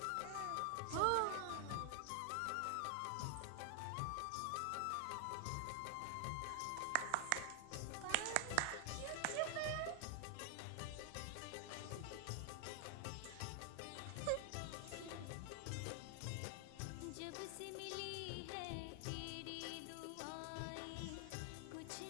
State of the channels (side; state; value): both; different; correlation 0.00